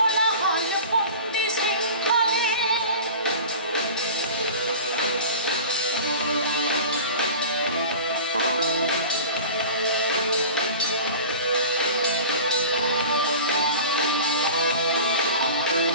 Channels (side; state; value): both; inverted; correlation -0.37